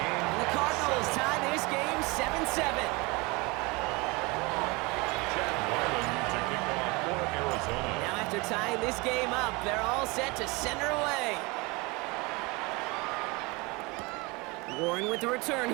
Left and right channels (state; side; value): quieter; left; 25.8 dB